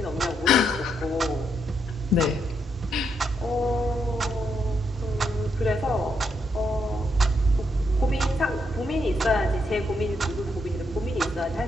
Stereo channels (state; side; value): normal; both; correlation 0.79